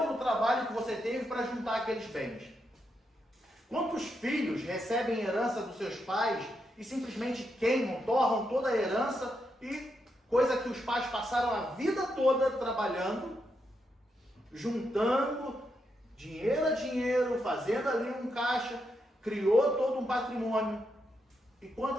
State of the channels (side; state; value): both; normal; correlation 0.82